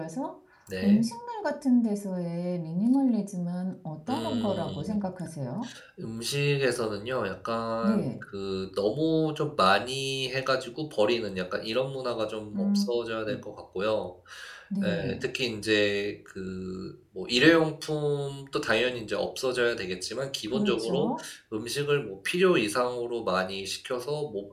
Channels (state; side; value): identical; both; correlation 1.00